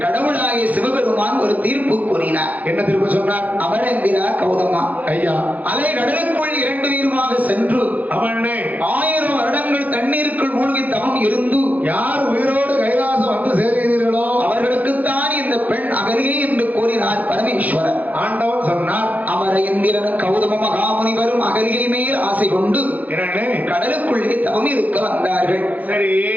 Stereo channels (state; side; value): late; left; 0.078 ms